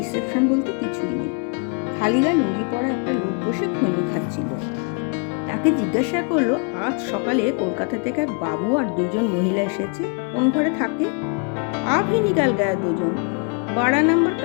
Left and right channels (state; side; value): quieter; right; 35.1 dB